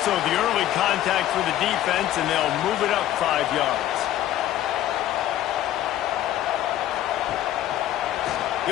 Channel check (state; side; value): quieter; right; 12.8 dB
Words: So the early contact for the defense, and they'll move it up 5 yards.